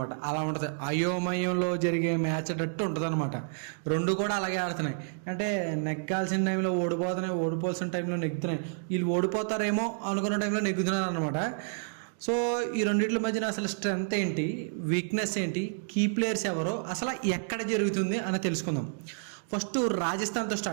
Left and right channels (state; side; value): silent; left; digital silence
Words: అలా ఉంటుంది, అయోమయంలో జరిగే మ్యాచ్ అన్నట్టు ఉంటుంది అనమాట. రెండు కూడా అలాగే ఆడుతున్నాయి. అంటే నెగ్గాల్సిన టైంలో ఓడిపోతున్నాయి, ఓడిపోవాల్సిన టైంలో నెగ్గుతున్నాయి. వీళ్ళు ఓడిపోతారేమో అనుకున్న టైంలో నెగ్గుతున్నారు అనమాట. సో ఈ రెండింటి మధ్యన అసలు స్ట్రెంగ్త్ ఏంటి, వీక్నెస్ ఏంటి, కీ ప్లేయర్స్ ఎవరో, అసలు ఎక్కడ జరుగుతుంది అని తెలుసుకుందాం. ఫస్ట్ రాజస్థాన్తో